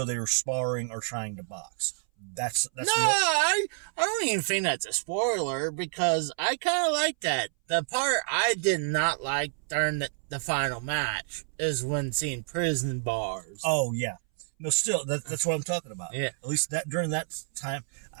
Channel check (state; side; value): silent; left; 59 dB below the other